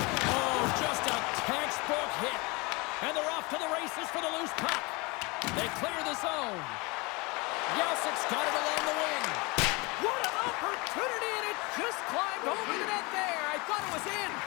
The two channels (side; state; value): right; quieter; 26.6 dB